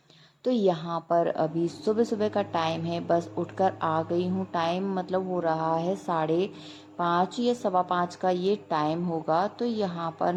तो यहाँ पर अभी सुबह सुबह का टाइम है, बस उठकर आ गई हूँ। टाइम मतलब हो रहा है 5:30 या 5:15 का ये टाइम होगा। तो यहाँ पर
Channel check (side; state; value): both; identical; correlation 1.00